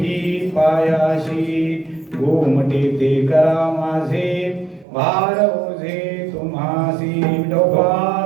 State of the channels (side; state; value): left; drops out; at 4.9 s